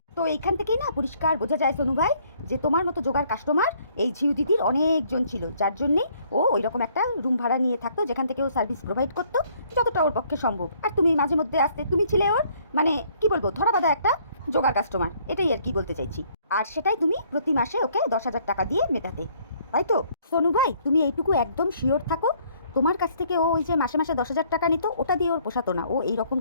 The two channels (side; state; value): both; inverted; correlation -0.63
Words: তো এইখান থেকেই না পরিষ্কার বোঝা যায় সোনু ভাই যে তোমার মতো জোগাড় কাস্টমার এই ঝিউ দিদির অনেকজন ছিল, যার জন্যে ও ওই রকম একটা রুম ভাড়া নিয়ে থাকতো যেখান থেকে ও সার্ভিস প্রোভাইড করতো যতটা ওর পক্ষে সম্ভব। আর তুমি মাঝে মধ্যে আসতে, তুমি ছিলে ওর মানে কি বলবো ধরা বাঁধা একটা জোগাড় কাস্টমার, এটাই আর কি বলতে চাইছি। আর সেটাই তুমি প্রতি মাসে ওকে 10,000 টাকা দিয়ে মেটাতে, তাই তো? সোনু ভাই তুমি এইটুকু একদম শিওর থাকো, তোমার কাছ থেকে ও ওই যে মাসে মাসে 10,000 টাকা নিত, ওটা দিয়ে ওর পোষাতো না, ও এই রকম